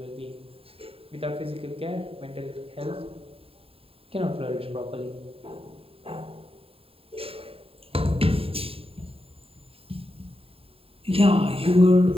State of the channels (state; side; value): late; left; 0.27 ms